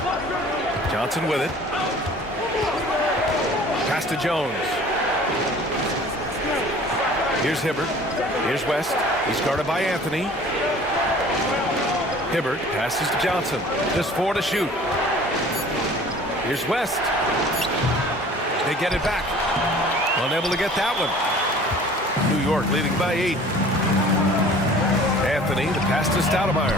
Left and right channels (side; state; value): both; normal; correlation 0.48